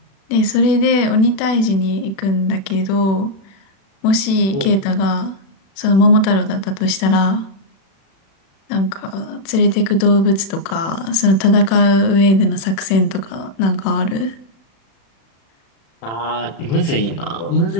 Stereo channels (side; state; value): right; late; 36 ms